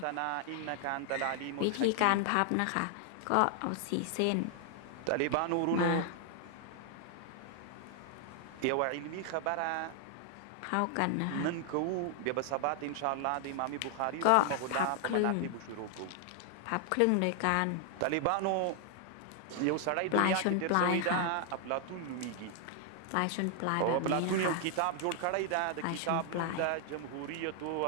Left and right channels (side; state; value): both; different; correlation 0.00